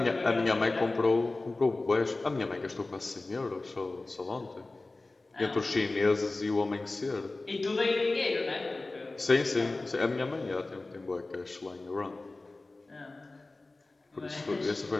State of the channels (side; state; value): right; quieter; 3.2 dB